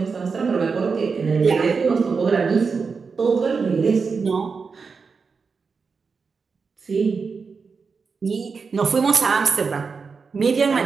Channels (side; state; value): left; quieter; 5.1 dB